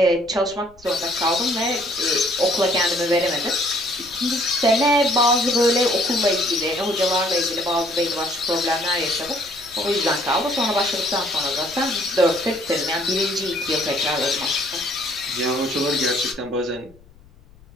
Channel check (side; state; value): left; noise; rumble, 26 dB below the sound